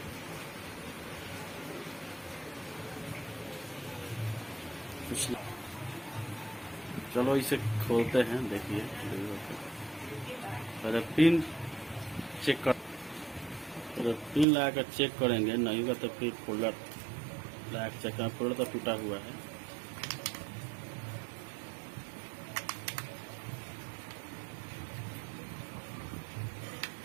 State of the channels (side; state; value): left; drops out; at 14.5 s